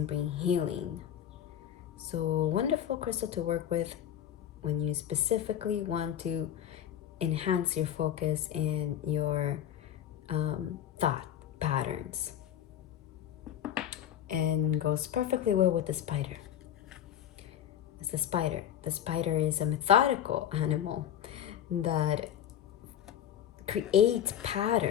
bring healing. So wonderful crystal to work with when you specifically want to enhance your focus and your thought patterns. And goes perfectly well with the spider. It's the spider. The spider is a methodical animal that creates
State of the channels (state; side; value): quieter; right; 10.2 dB